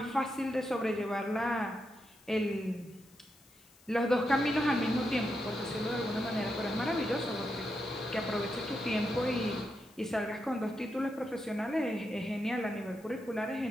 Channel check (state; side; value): noise; left; hiss, 28 dB below the sound